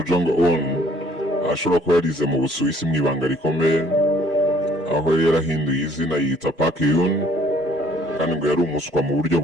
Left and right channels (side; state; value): both; normal; correlation 0.59